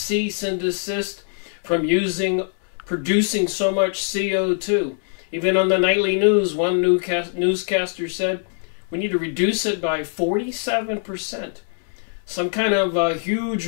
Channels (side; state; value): right; silent; 64 dB below the other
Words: and desist from producing so much CO2. Even on the nightly news, one newscaster said, we need to reduce it by 47%. Some kind of a huge